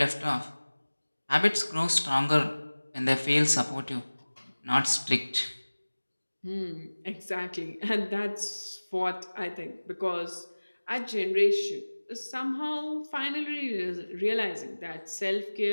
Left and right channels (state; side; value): inverted; both; correlation -1.00